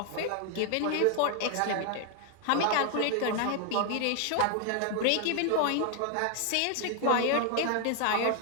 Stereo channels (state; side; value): different; both; correlation 0.00